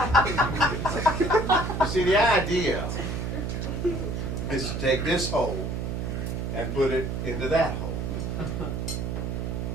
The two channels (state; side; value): noise; right; hum, 3 dB below the sound